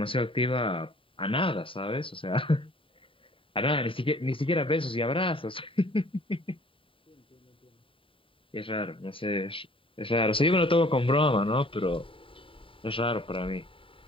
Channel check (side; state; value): right; late; 0.25 ms